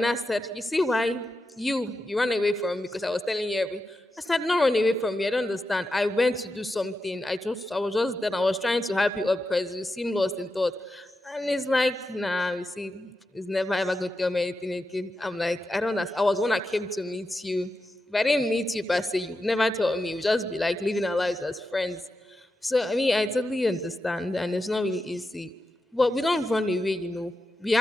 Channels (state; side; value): normal; both; correlation 0.89